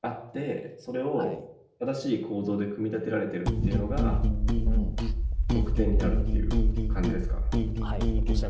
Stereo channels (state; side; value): identical; both; correlation 1.00